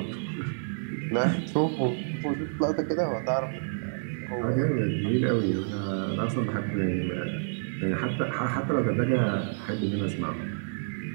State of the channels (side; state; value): left; silent; digital silence